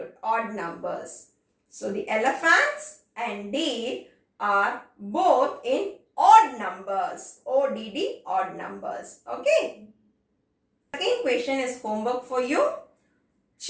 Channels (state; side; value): identical; both; correlation 1.00